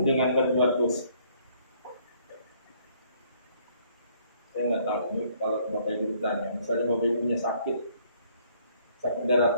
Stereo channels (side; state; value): both; inverted; correlation -0.64